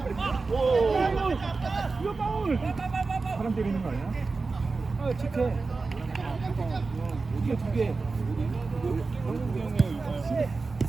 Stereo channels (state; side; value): quieter; left; 4.0 dB